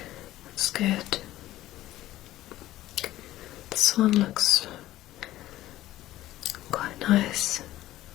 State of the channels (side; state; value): right; quieter; 15.1 dB